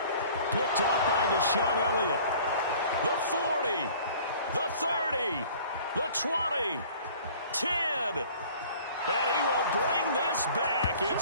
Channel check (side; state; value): both; inverted; correlation -0.49